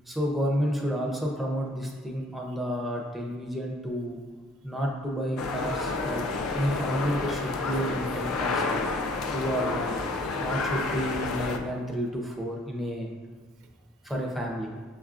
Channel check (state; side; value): normal; both; correlation 0.59